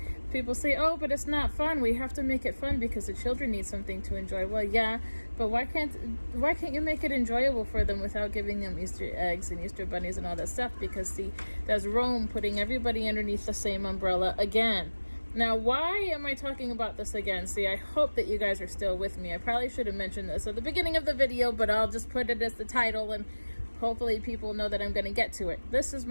People say, oh, but it's not fun. We have to make it fun because the children need something to enjoy. Well, yeah, but why can't you make it enjoyable for them without giving them Easter eggs and Easter bunnies and all that stuff? Because see, that's Rome putting everybody underneath the same umbrella again. Now, why am I talking about this again? See, I hope that you guys are still with me. I probably should have mentioned this at the beginning of the video, but I'll just put it as the title, and hopefully people know that I'm going to get to it. This is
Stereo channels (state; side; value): inverted; both; correlation -1.00